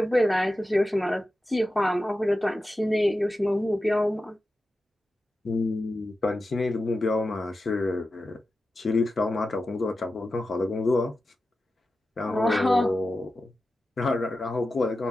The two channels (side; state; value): both; normal; correlation 0.92